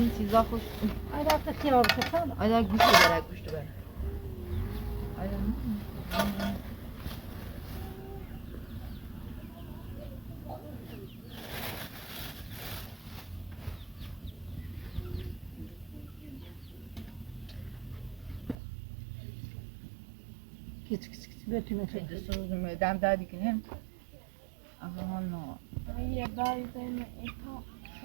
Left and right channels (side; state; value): left; drops out; at 18.6 s